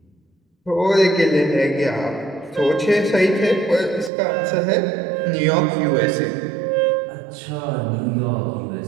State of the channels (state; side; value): drops out; left; at 4.1 s